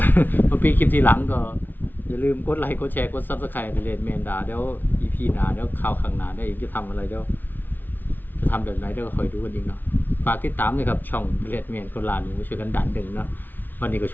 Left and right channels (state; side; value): late; right; 0.088 ms